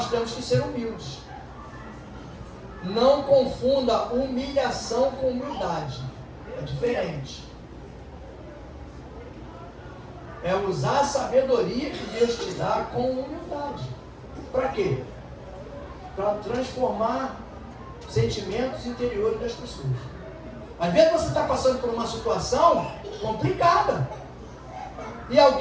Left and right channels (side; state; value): both; identical; correlation 1.00